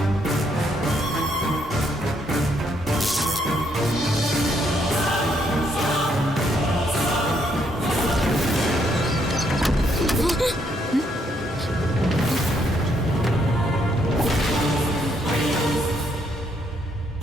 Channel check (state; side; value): normal; both; correlation 0.73